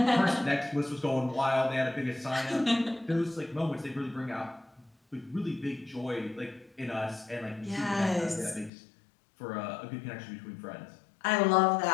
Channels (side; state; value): right; drops out; at 8.7 s